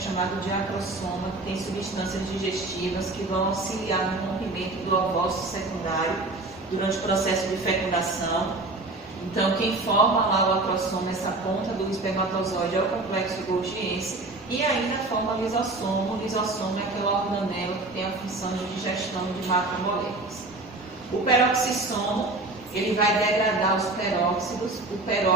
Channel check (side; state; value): left; quieter; 3.1 dB